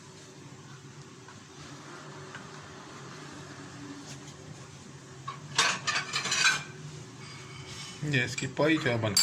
ये इसकी पाई जो है बन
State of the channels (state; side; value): identical; both; correlation 1.00